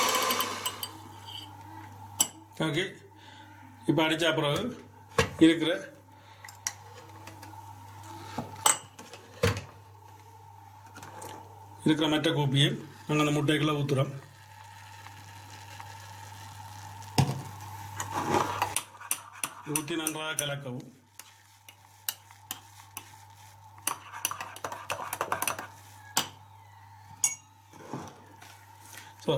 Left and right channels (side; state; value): both; identical; correlation 1.00